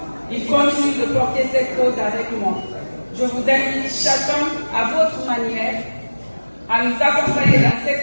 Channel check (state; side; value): inverted; both; correlation -1.00